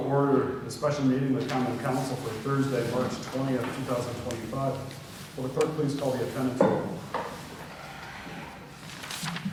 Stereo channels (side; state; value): both; identical; correlation 1.00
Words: order the special meeting of the Common Council for Thursday, March 20th, 2025. Will the clerk please call the attendance roll?